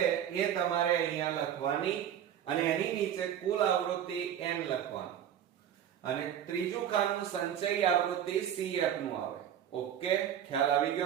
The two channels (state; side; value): quieter; left; 9.9 dB